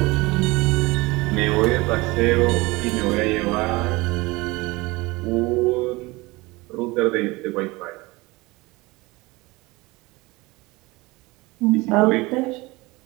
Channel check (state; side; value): quieter; left; 22.5 dB